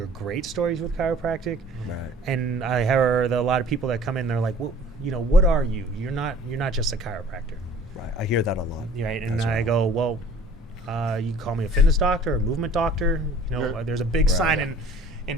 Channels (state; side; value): normal; both; correlation 0.50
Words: great stories with chiropractic, Right. and I heard a lot of people that come in. They're like, well, what are you? You're not just a chiropractor, Right. I hear that a lot. right? And as I well. go, well, you can call me a fitness doctor or a movement doctor. There's a big Right. sign in